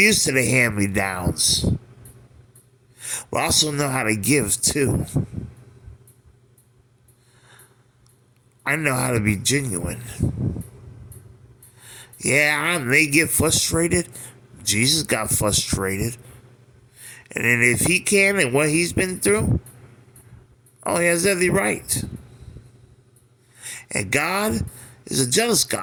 to the hand-me-downs. But I also know how to give too. I know how to be genuine. Yeah, I may get frustrated. Jesus got frustrated. And then if he can and what he's been through, oh, he has every right. And God is a jealous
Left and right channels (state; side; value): identical; both; correlation 1.00